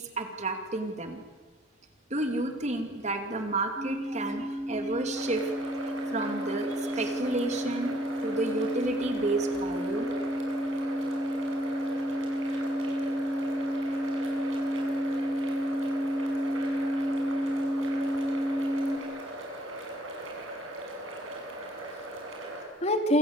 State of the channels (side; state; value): both; normal; correlation 0.65